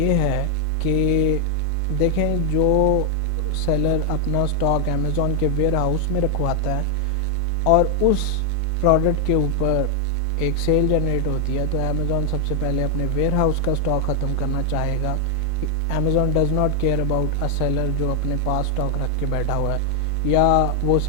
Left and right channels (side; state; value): both; normal; correlation 0.00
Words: ہے کہ دیکھیں جو سیلر اپنا سٹاک امیزون کے ویئر ہاؤس میں رکھواتا ہے اور اس پروڈکٹ کے اوپر ایک سیل جنریٹ ہوتی ہے, تو امیزون سب سے پہلے اپنے ویئر ہاؤس کا سٹاک ختم کرنا چاہے گا. Amazon does not care about a seller جو اپنے پاس سٹاک رکھ کے بیٹھا ہوا ہے, یا وہ